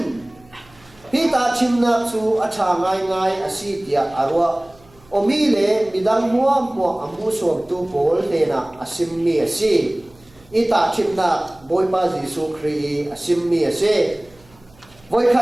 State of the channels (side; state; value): right; noise; hum, 28 dB below the sound